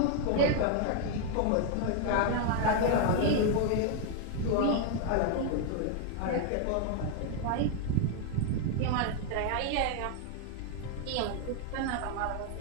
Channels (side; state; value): both; different; correlation 0.00